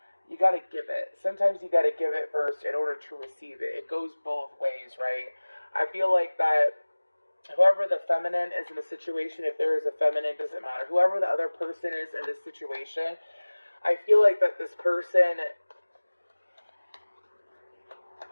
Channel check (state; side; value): inverted; both; correlation -1.00